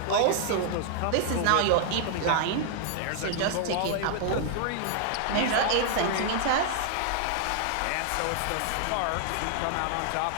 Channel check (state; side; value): different; both; correlation 0.00